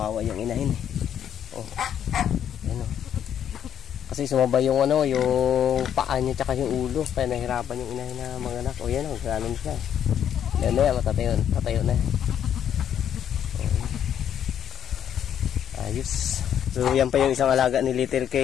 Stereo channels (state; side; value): quieter; right; 9.5 dB